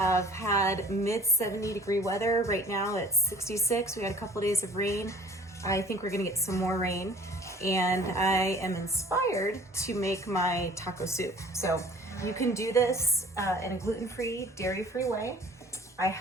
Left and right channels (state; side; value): normal; both; correlation 0.49